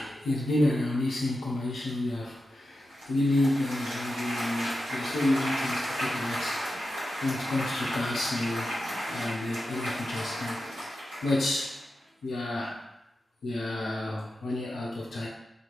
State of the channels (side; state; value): both; normal; correlation 0.90